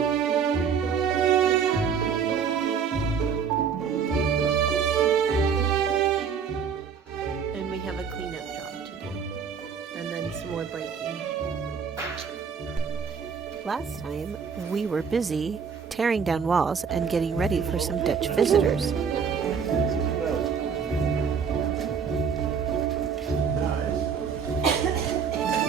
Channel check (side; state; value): left; quieter; 6.5 dB